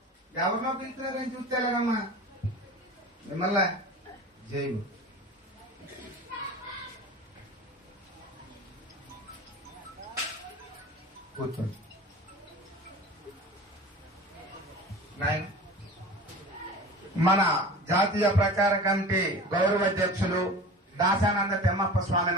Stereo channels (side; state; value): both; normal; correlation 0.36